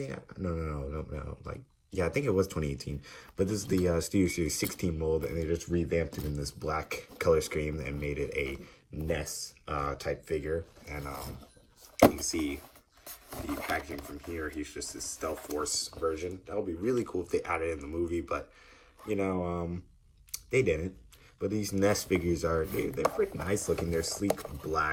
No. Yeah, I think it was 2018. But this is the Studio Series 16 mold, and they just revamped it in this black color scheme and made it a Nest type figure. And you can see the packaging from here. He's just this Stealth Force version. That would be really cool if they added it in the movie, but they didn't. But these Nest figures they're pretty nice looking. They're sleek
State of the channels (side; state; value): both; identical; correlation 1.00